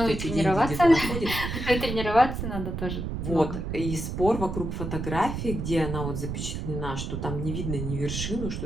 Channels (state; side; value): noise; right; rumble, 4 dB below the sound